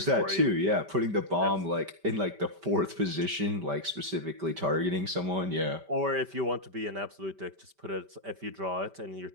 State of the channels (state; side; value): late; left; 5.1 ms